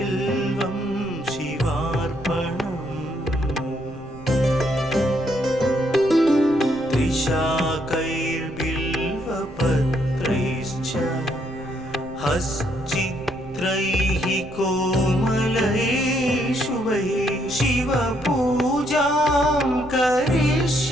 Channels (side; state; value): right; noise; rumble, 18 dB below the sound